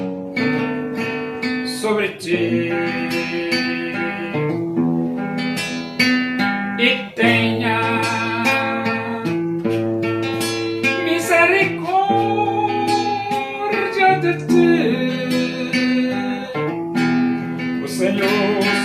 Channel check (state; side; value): identical; both; correlation 1.00